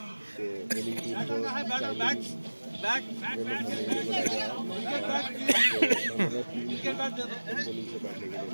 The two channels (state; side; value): inverted; both; correlation -1.00